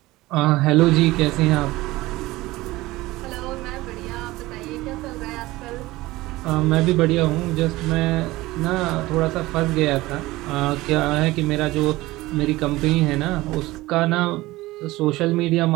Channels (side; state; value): left; quieter; 19.0 dB